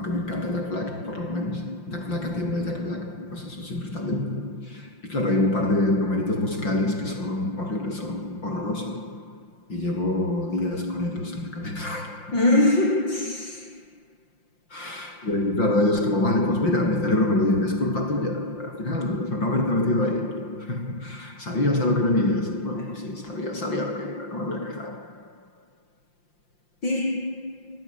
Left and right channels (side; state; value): right; late; 5.7 ms